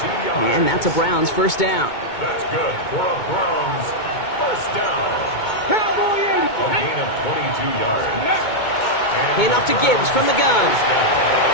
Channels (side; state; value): right; late; 2.2 ms